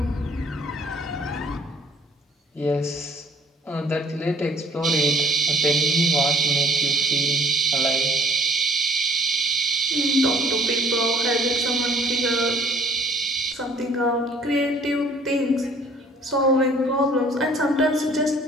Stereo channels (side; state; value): both; normal; correlation 0.55